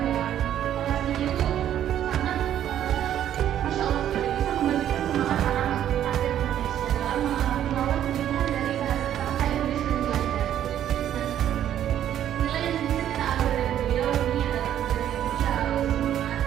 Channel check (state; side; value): quieter; left; 10.9 dB